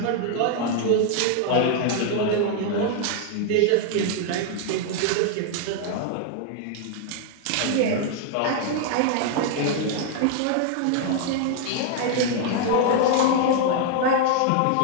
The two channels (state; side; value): different; both; correlation 0.00